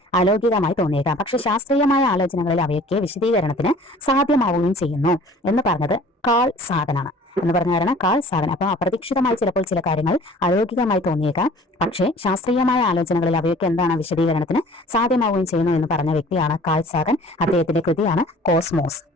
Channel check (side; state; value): both; normal; correlation 0.49